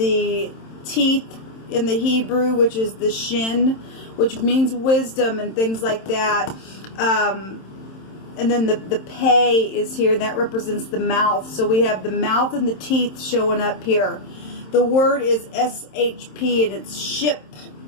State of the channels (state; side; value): late; right; 27 ms